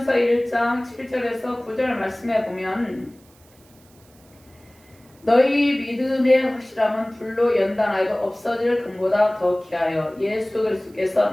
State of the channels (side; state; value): right; noise; hiss, 29 dB below the sound